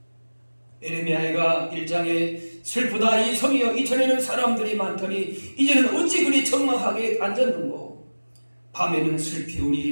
예레미야가 1장에 슬프다 이 성이여 이전에는 사람들이 많더니 이제는 어찌 그리 적막하게 앉았는고 밤에는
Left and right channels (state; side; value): inverted; both; correlation -1.00